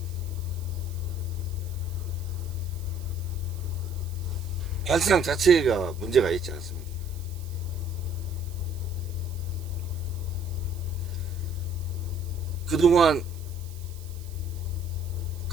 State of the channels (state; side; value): noise; right; hiss, 20 dB below the sound